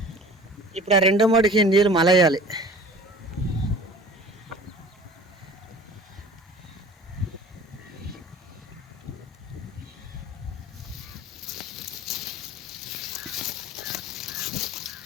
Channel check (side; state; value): both; normal; correlation 0.43